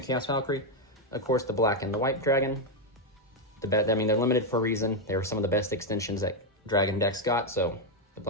Valkyrie. Of course, the black and the white dragon. They're limited for a reason. They were some of the best extensions that dragon decks got. So the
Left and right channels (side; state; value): both; normal; correlation 0.02